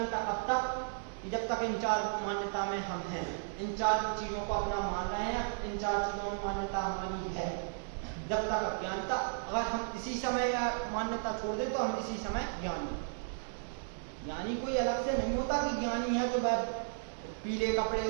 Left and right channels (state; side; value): silent; left; digital silence